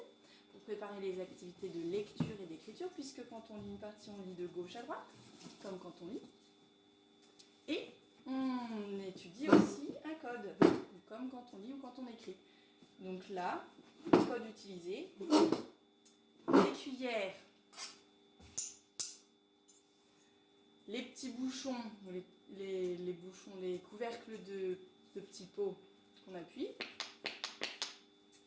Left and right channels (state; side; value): identical; both; correlation 1.00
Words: pour préparer les activités de lecture et d'écriture puisque quand on lit une partition on lit de gauche à droite comme quand on lit et on étudie aussi un code comme quand on lit ou quand on écrit. Donc là, le code utilisé, les cuillères, les petits bouchons, les bouchons, les couvercles de petits pots qu'on appuie.